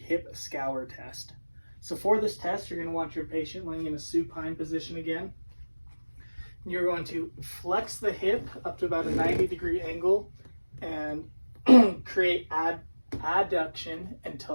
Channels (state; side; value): inverted; both; correlation -1.00